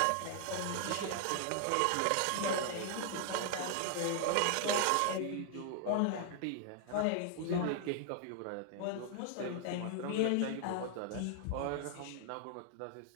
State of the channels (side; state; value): both; different; correlation 0.00